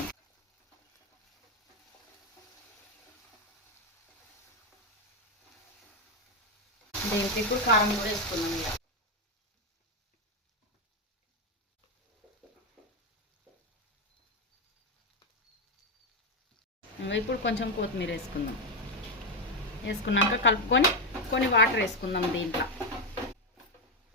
దీనికి ఇప్పుడు కారం కూడా వేసుకుందాం। ఇప్పుడు కొంచెం కొత్తిమీర వేసుకుందాం। వేసుకున్నాక కలుపుకొని కొన్ని వాటర్ వేసుకుందాం దీంట్లో।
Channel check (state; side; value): normal; both; correlation 0.07